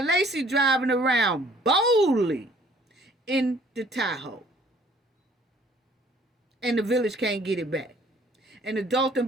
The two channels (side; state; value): both; normal; correlation 0.58